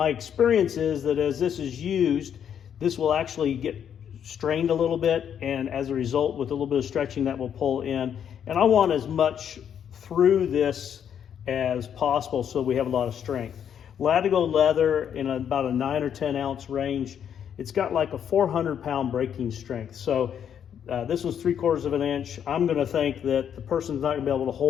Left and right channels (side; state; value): right; quieter; 8.7 dB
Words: experience is that as this is used, this will actually get strained a little bit, and as a result, with a little bit of stretching, that will pull in. And I want as much through this as possible so we have a lot of strength. Latigo leather in about a 9 or 10 ounce range, it's got like a 400-pound breaking strength. So this was 3/4 of an inch. I'm going to think that the person's not going to be able to